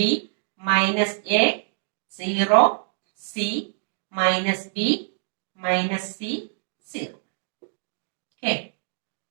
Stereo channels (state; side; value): silent; left; digital silence